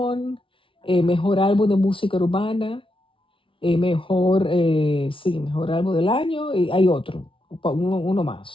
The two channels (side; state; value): right; late; 0.25 ms